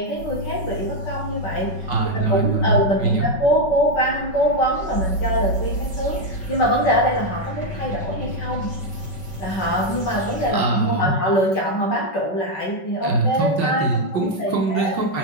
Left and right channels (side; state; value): right; late; 5.3 ms